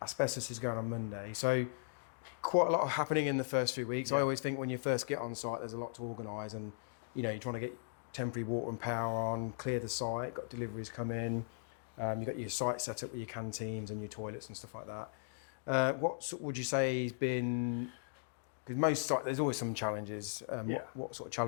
Asbestos is going on Monday, so quite a lot happening in the first few weeks. I always think when you first get on site, there's a lot to organise, and you're trying to get temporary water and power on, clear the site, got deliveries come in, You've got your site set up with your canteens and your toilets and stuff like that. Would you say has been? Because most sites, there's always some challenges. What sort of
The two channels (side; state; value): right; silent; digital silence